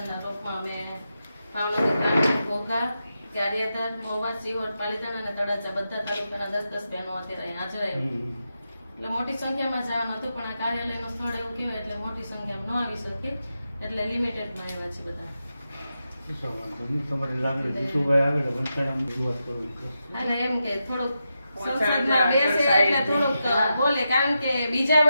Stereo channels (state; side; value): inverted; both; correlation -0.88